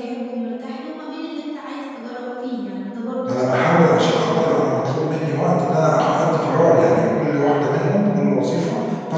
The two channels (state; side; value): identical; both; correlation 1.00